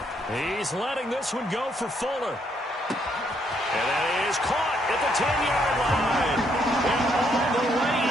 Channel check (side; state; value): both; normal; correlation 0.72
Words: He's letting this one go for Fuller. And that is caught at the 10-yard line. And all the way